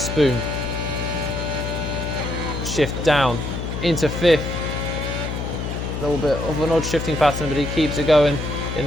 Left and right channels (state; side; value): noise; left; hum, 4 dB below the sound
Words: Shift down into 5th. A little bit of an odd shifting pattern, but he keeps it going